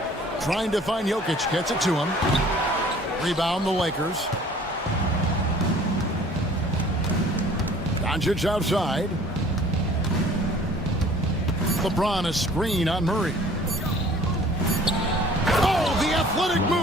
Trying to find Jokic. Gets it to him. Rebound the Lakers. Doncic outside. LeBron a screen on Murray. Oh, the athletic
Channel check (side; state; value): both; normal; correlation 0.51